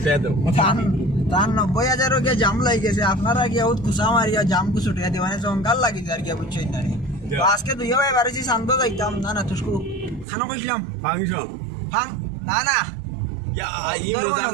দাও তার 90,000 গিয়া জাম লাগি গেছে আপনারা গিয়া উত কুসা মারিয়া জাম কু ছুটিয়া দিবা মানে জঙ্গল লাগি যার গিয়া বুঝছই না রে তো আজকে দুই ভাই বাড়িছি শান্ত যাইতাম না তুসকু খানো কইছিলাম ফাংশন ফাং না ইয়া এই মজার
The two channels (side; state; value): left; drops out; at 10.2 s